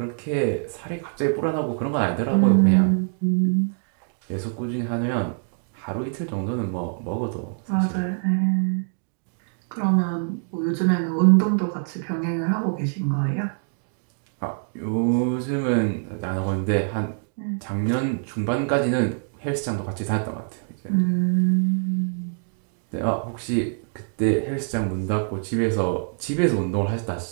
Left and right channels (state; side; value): silent; left; digital silence